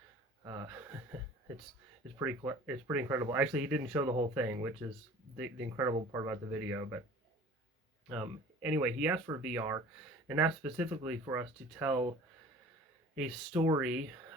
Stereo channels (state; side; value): normal; both; correlation 0.46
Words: uh, it's it's pretty incredible. Actually, he didn't show the whole thing, which is the incredible part about the video. But anyway, he asked for VR, and asked specifically for us to tell a story